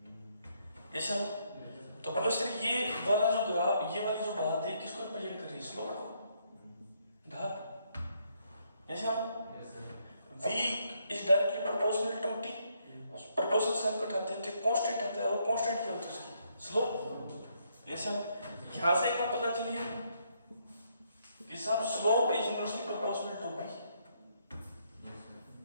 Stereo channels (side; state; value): both; inverted; correlation -0.73